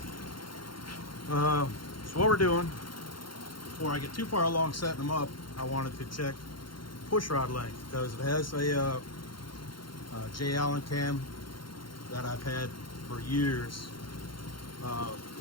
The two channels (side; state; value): right; late; 0.73 ms